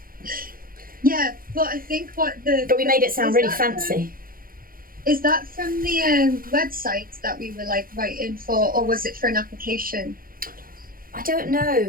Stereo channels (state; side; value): late; left; 0.42 ms